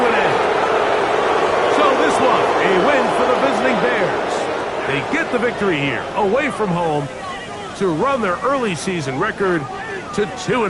end. So this one, a win for the visiting Bears. They get the victory here, away from home, to run their early season record to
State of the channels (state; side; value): identical; both; correlation 1.00